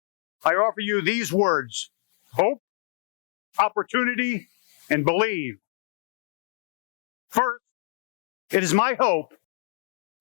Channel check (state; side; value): silent; right; digital silence